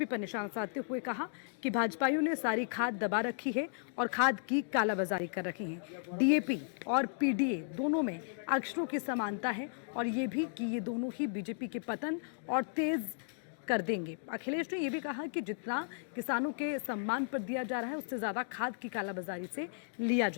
पर निशाना साधते हुए कहा कि भाजपाइयों ने सारी खाद दबा रखी है और खाद की कालाबाजारी कर रखी है। डीएपी और पीडीए दोनों में अक्षरों की समानता है और ये भी कि ये दोनों ही बीजेपी के पतन और तेज कर देंगे। अखिलेश ने यह भी कहा कि जितना किसानों के सम्मान पर दिया जा रहा है उससे ज्यादा खाद की कालाबाजारी से लिया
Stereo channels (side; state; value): right; silent; digital silence